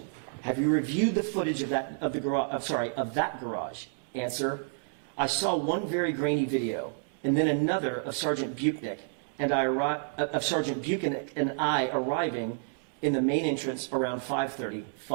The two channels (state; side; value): silent; left; digital silence